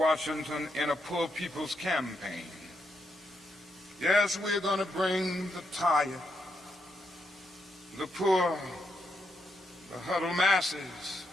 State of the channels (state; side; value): normal; both; correlation 0.81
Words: in a poor people's campaign. Yes, we're going to bring the tired, the poor, the huddled masses.